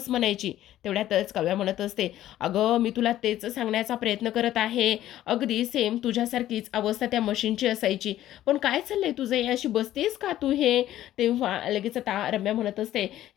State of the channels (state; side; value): quieter; right; 13.3 dB